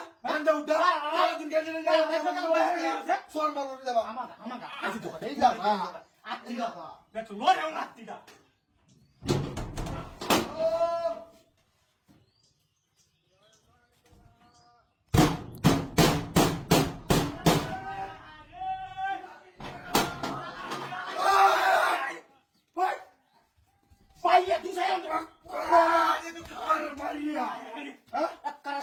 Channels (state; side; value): identical; both; correlation 1.00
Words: বান্দা উঠা দিন গেলে সোর মারো রে বাবা আমাগা আজি তো এই যা আত্তিগা দেখো লোরে আত্তিগা Vaya, tú sabes dónde vas. María. ¿Ah?